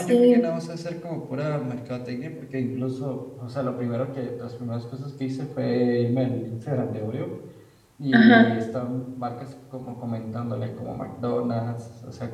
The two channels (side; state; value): both; identical; correlation 1.00